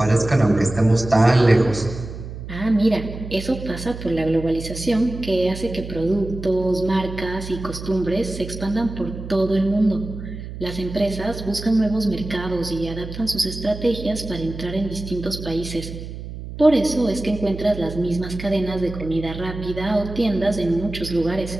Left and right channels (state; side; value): noise; right; hum, 10 dB below the sound